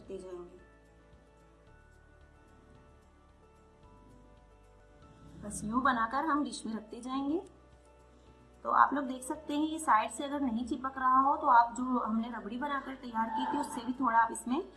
जाएंगे। बस यूं बनाकर हम डिश में रखते जाएंगे। तो आप लोग देख सकते हैं, ये साइड से अगर नहीं चिपक रहा हो तो आप जो हमने रबड़ी बनाकर तैयार की थी उससे भी थोड़ा आप इसमें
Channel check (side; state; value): both; identical; correlation 1.00